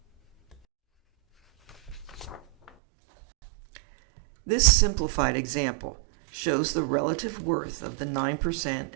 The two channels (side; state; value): left; drops out; at 2.7 s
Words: This simplified example shows the relative worth of the 9%